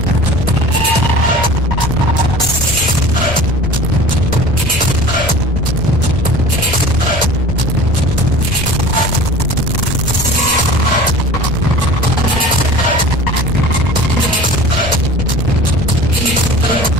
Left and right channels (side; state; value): left; noise; rumble, 9 dB below the sound